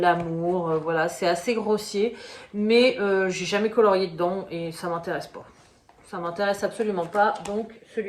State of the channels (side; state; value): both; identical; correlation 1.00